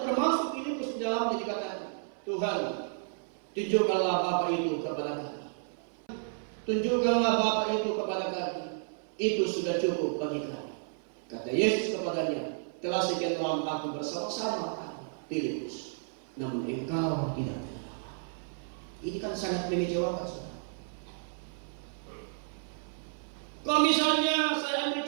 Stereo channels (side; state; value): left; silent; 56 dB below the other